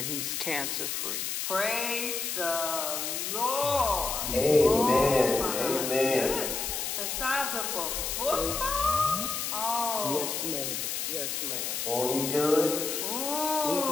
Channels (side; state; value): left; noise; hiss, 2 dB below the sound